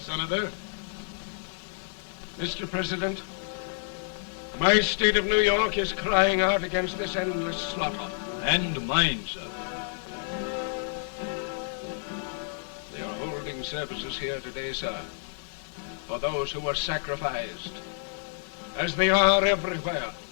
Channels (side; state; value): right; silent; digital silence